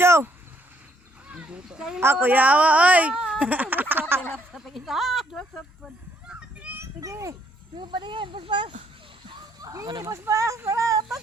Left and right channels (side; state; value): both; normal; correlation 0.69